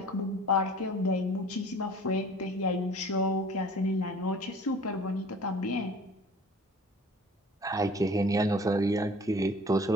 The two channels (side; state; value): both; normal; correlation 0.47